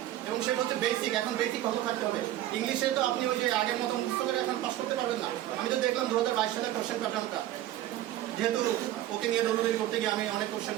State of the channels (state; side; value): quieter; left; 13.8 dB